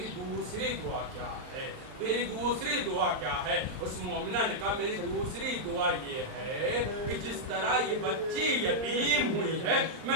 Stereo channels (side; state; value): left; late; 39 ms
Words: دوسری دعا کیا ہے میری دوسری دعا کیا ہے اس مومنہ نے کہا میری دوسری دعا یہ ہے کہ جس طرح یہ بچی یتیم ہوئی ہے